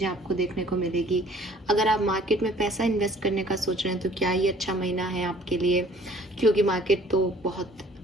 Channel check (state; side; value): normal; both; correlation 0.55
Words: आपको देखने को मिलेगी। अगर आप मार्केट में पैसा इन्वेस्ट करने का सोच रहे हैं तो क्या ये अच्छा महीना है आपके लिए, क्योंकि मार्केट तो बहुत